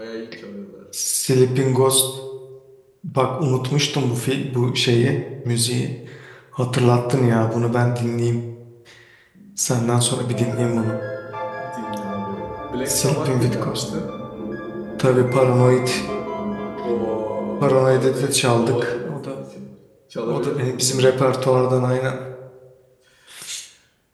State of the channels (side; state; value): both; identical; correlation 1.00